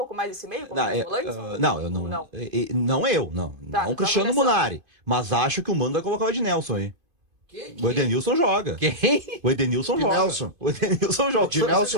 mais esse meio? Como volantes? Não, eu não. Não. Tá, não o Cristiano Munari. Mas acho que o Mano vai colocar o Ednelson aí. O Edenilson joga. Quem? O Edenilson joga. O Edenilson joga.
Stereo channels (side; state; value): left; late; 2.5 ms